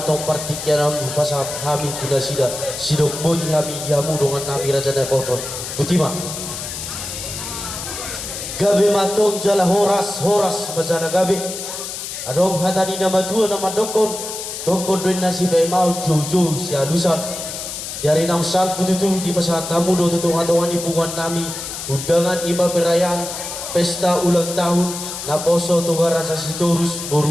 partikian pasal hami tuna sida. Sidok bodi hami diamu dengan nami raja pos. Butima. Gabi matong jala horas majala gabi. Adom hatani nama tua nama dokon doin nasi mau jojo si alusan dari nausal pututu di pasar tamu do tutungan di pungan nami undangan ima perayaan pesta ulang tahun naposo tugara sasitorus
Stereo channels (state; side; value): noise; left; hiss, 7 dB below the sound